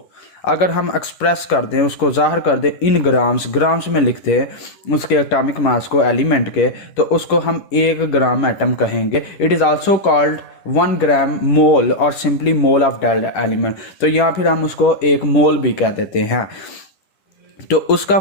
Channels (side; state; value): right; late; 10 ms